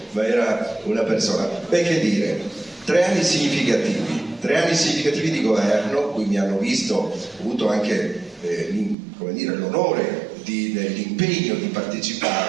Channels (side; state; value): left; drops out; at 9.0 s